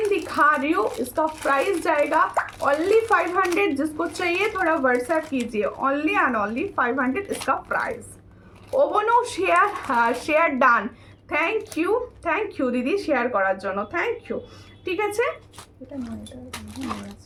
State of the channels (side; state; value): both; identical; correlation 1.00